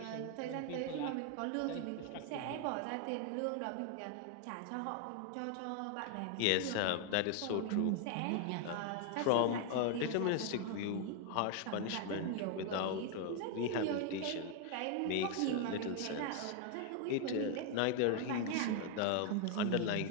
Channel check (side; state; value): both; different; correlation 0.00